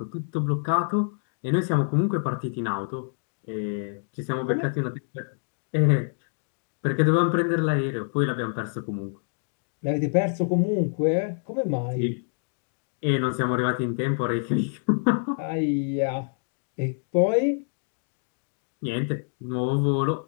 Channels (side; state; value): right; silent; digital silence